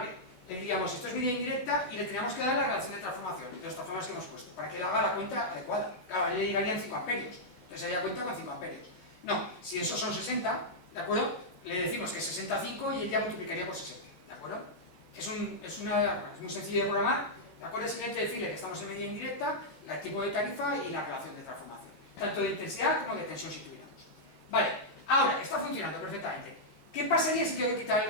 le diríamos esto es medida indirecta y le teníamos que dar la relación de transformación, de los transformadores que hemos puesto, para que él haga la cuenta adecuada. Claro, le llegarían 5 amperios, entonces haría cuenta con 5 amperios. No, si esos son 60, ¿de acuerdo? Le decimos que es 65 y él ya multiplicaría por 60, ¿de acuerdo? Es muy sencillo de programar, ¿de acuerdo? Es simplemente decirle que estamos en medida indirecta, el tipo de tarifa y la relación de transformación, tanto de intensidad como de tensión si tuviéramos. Vale, ahora, está funcionando perfectamente. ¿Qué pasaría si tengo que quitar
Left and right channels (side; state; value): right; late; 16 ms